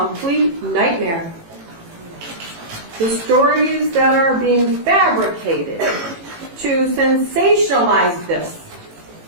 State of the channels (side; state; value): left; late; 18 ms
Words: nightmare. The stories that are being fabricated to sensationalize this.